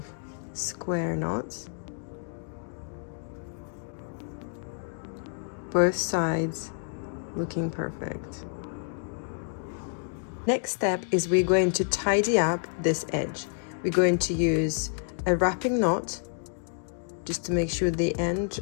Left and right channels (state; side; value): silent; right; digital silence